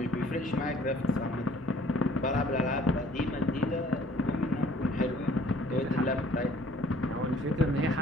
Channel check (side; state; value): both; normal; correlation 0.57